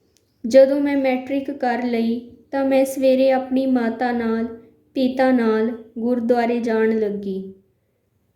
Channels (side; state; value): both; identical; correlation 1.00